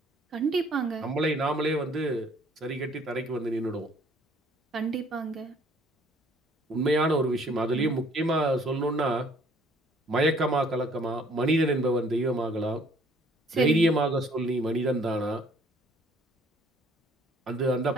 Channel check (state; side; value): normal; both; correlation 0.59